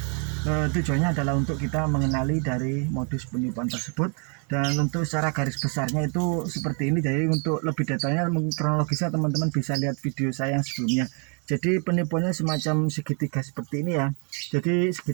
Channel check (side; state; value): left; quieter; 38.4 dB